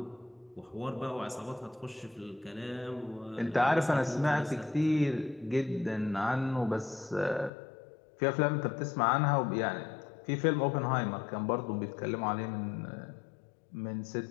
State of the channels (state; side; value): drops out; right; at 7.5 s